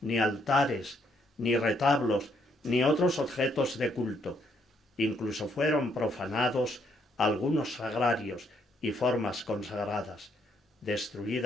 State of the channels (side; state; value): both; normal; correlation 0.72